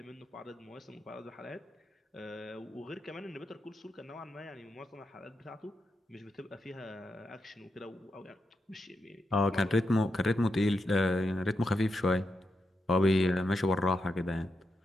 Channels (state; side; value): normal; both; correlation 0.85